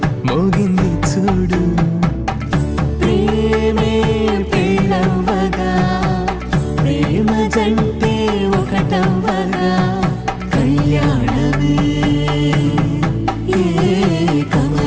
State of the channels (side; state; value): both; identical; correlation 1.00